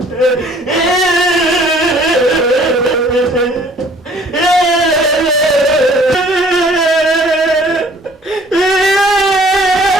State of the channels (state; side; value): normal; both; correlation 0.55